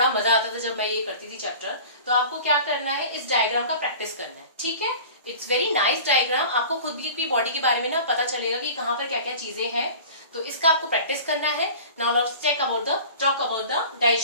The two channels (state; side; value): inverted; both; correlation -0.40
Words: मजा आता था जब मैं ये करती थी चैप्टर. तो आपको क्या करना है, इस डायग्राम का प्रैक्टिस करना है, ठीक है? It's very nice diagram. आपको खुद भी अपनी बॉडी के बारे में ना पता चलेगा कि कहाँ पर क्या क्या चीजें हैं. तो इसका आपको प्रैक्टिस करना है. Now let's talk about the